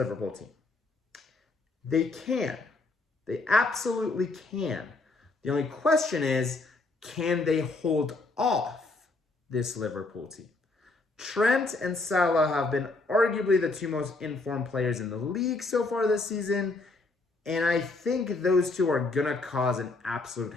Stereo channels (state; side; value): quieter; right; 3.4 dB